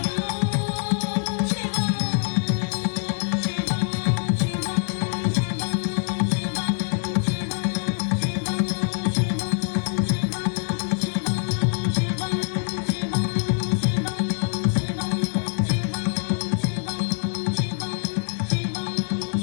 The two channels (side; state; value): right; silent; 62 dB below the other